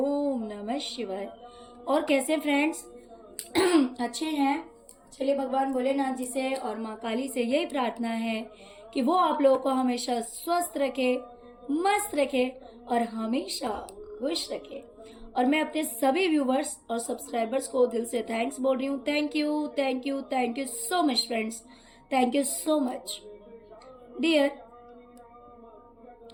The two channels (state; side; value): identical; both; correlation 1.00